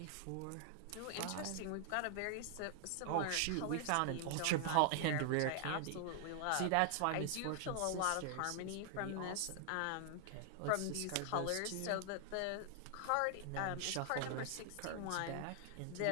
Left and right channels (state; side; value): different; both; correlation 0.00